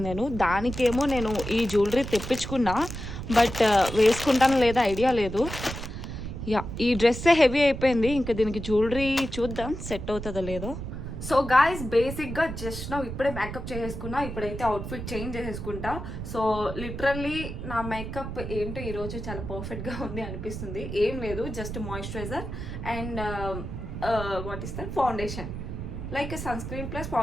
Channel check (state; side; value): noise; right; rumble, 7 dB below the sound